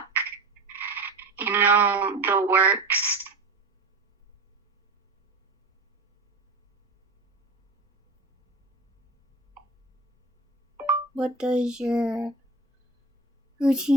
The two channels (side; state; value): left; quieter; 3.2 dB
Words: the works. what does your